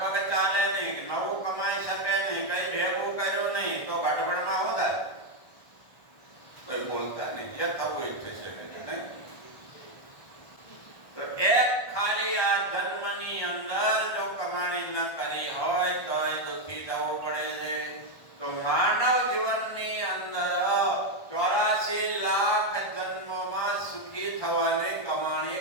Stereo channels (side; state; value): right; late; 1.4 ms